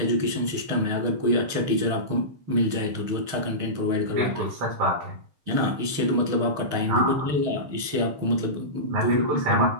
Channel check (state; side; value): late; left; 6.5 ms